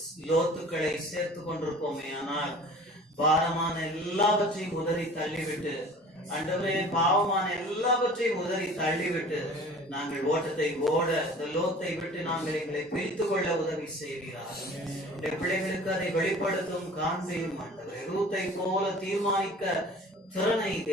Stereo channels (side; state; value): both; normal; correlation 0.45